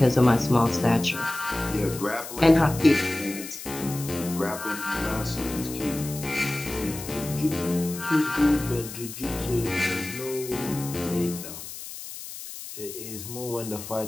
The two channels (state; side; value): noise; left; hiss, 11 dB below the sound